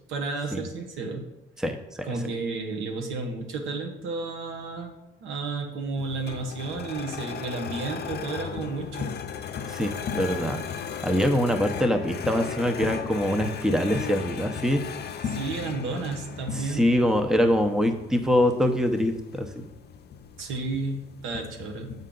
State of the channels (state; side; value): normal; both; correlation 0.71